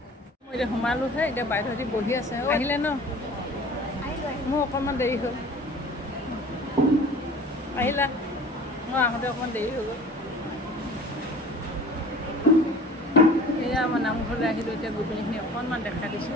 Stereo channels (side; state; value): both; normal; correlation 0.44